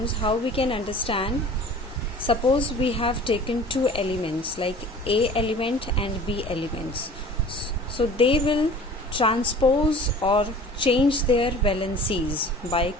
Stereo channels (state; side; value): normal; both; correlation 0.44